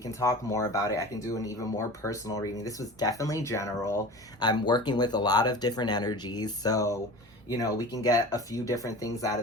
talk more about it. I can do an even more personal reading. This was definitely general. I'm working with a lot of different energies, so, you know, we can get a few different things out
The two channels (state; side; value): normal; both; correlation 0.35